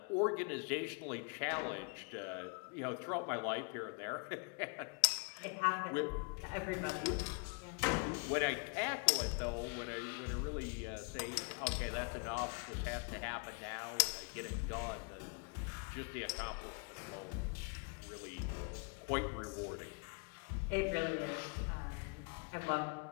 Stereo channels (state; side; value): quieter; right; 36.3 dB